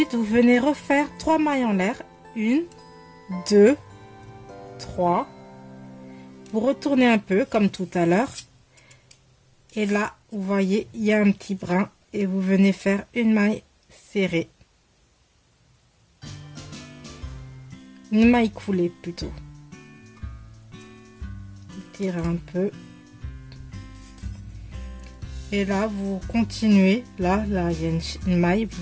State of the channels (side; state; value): both; identical; correlation 1.00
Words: vous venez refaire 3 mailles en l'air. 1, 2, 3. Vous retournez un peu comme tout à l'heure. Et là, vous voyez, il y a un petit brin. Et vous venez faire une maille serrée. Une maille coulée plutôt. Vous tirez un peu. Et là, vous continuez. Là, il y a une maille.